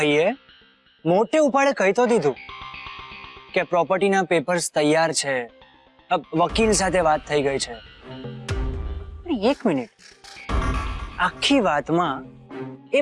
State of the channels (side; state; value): both; identical; correlation 1.00